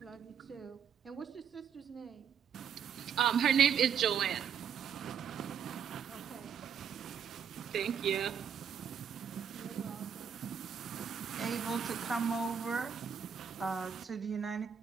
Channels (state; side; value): quieter; left; 7.7 dB